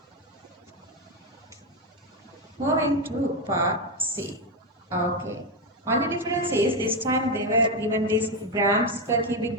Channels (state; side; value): normal; both; correlation 0.08